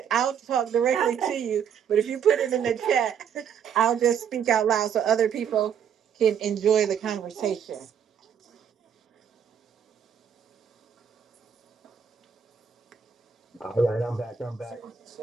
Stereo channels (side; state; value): left; quieter; 7.9 dB